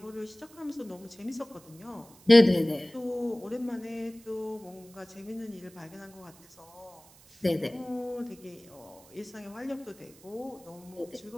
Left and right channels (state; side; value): noise; right; hiss, 24 dB below the sound